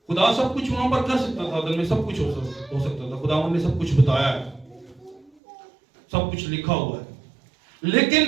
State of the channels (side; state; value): left; drops out; at 5.3 s